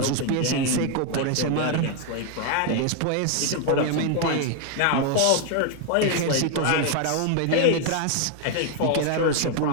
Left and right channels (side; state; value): both; different; correlation 0.01